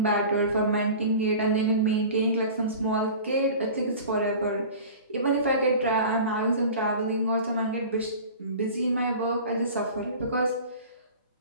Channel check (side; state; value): both; inverted; correlation -0.38